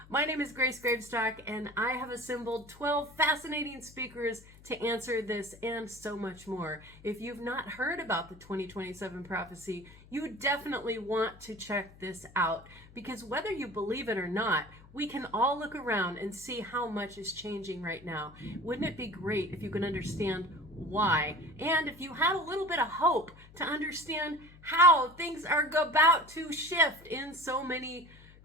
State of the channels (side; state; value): left; noise; hum, 22 dB below the sound